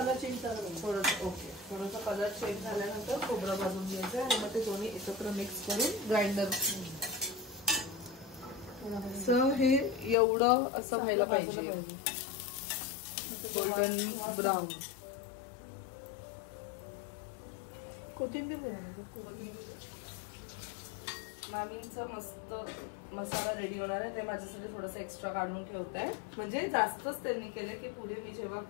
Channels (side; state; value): right; drops out; at 10.2 s